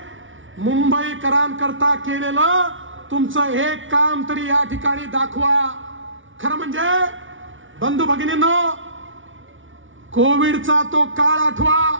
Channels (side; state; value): left; late; 0.56 ms